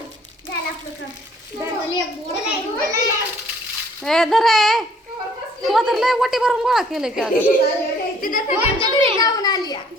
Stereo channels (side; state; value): both; normal; correlation 0.59